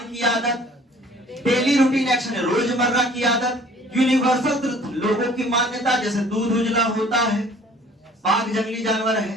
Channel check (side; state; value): both; normal; correlation 0.53